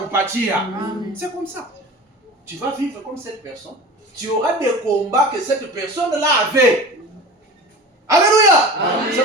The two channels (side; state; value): both; normal; correlation 0.35